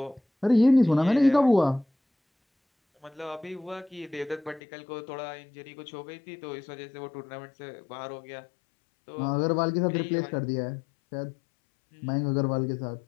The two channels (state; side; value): drops out; right; at 4.6 s